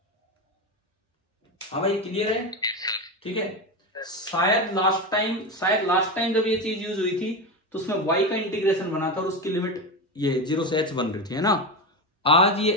हाँ भाई क्लियर है? ठीक है, शायद लास्ट टाइम जब ये चीज यूज हुई थी तो उसमें y का इंटीग्रेशन बना था और उसकी लिमिट ये 0 से h बन रही थी, है ना? आज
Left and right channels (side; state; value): both; normal; correlation 0.18